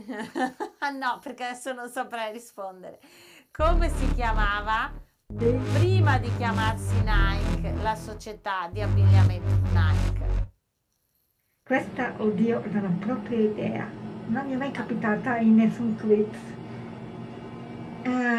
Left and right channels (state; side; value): identical; both; correlation 1.00